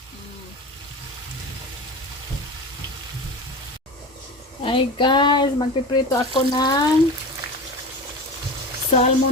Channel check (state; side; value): normal; both; correlation 0.30